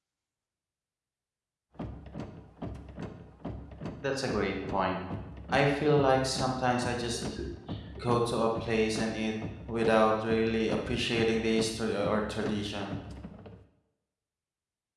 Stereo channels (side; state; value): both; identical; correlation 1.00